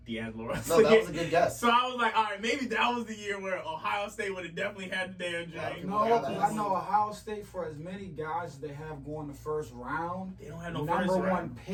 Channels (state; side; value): identical; both; correlation 1.00